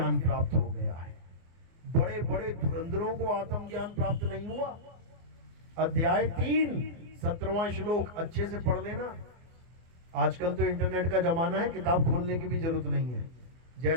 प्राप्त हो गया है। बड़े बड़े धुरंधरों को आत्मज्ञान प्राप्त नहीं हुआ। अध्याय 3 17वां श्लोक अच्छे से पढ़ लेना। आजकल तो इंटरनेट का जमाना है, किताब खोलने की भी जरूरत नहीं है।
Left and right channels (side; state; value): left; late; 24 ms